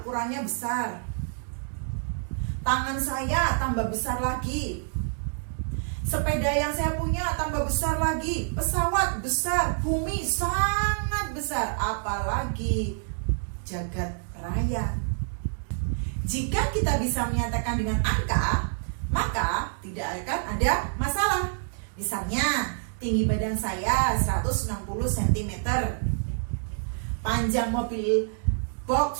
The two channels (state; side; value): silent; left; digital silence